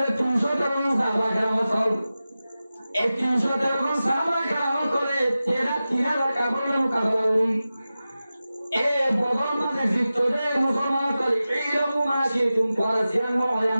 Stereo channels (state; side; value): inverted; both; correlation -0.95